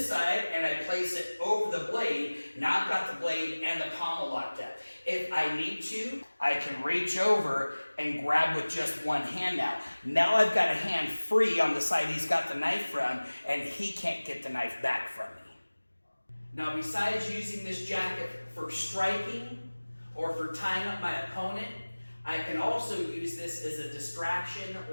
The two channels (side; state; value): both; inverted; correlation -1.00